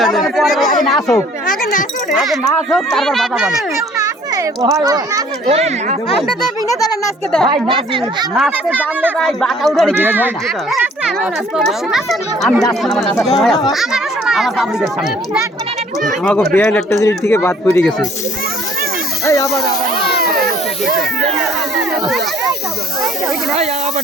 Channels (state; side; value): normal; both; correlation 0.57